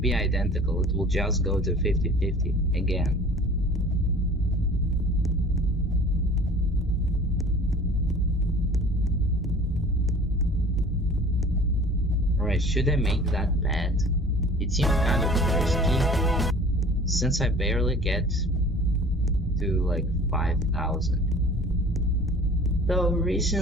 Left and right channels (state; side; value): normal; both; correlation 0.45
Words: identical. It will just go to 50-50 again. Alright, should I make that bet? It seems kind of risky, since I barely get to like 5,000. Though